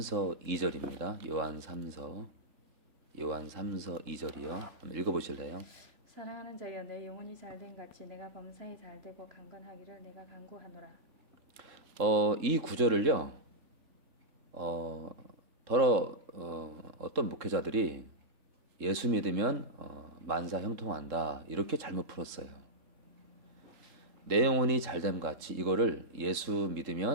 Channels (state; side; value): late; left; 3.7 ms